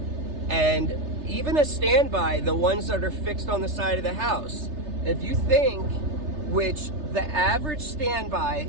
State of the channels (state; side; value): late; left; 3.3 ms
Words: And even a standby, the ones that are fixed on the side of the house, if you think, which the average